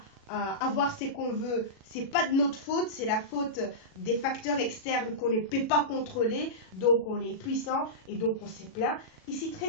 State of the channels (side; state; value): right; late; 37 ms